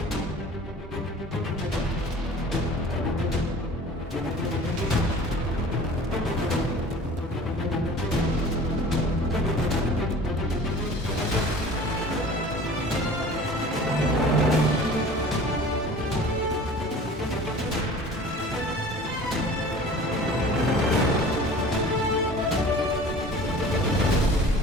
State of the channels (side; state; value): both; normal; correlation 0.43